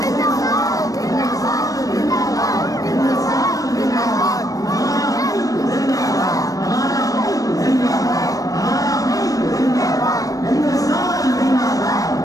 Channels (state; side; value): late; right; 0.17 ms